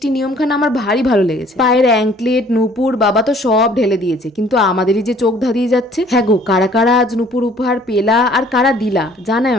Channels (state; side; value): normal; both; correlation 0.56